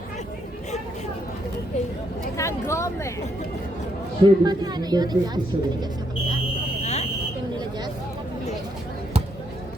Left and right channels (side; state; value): both; normal; correlation 0.75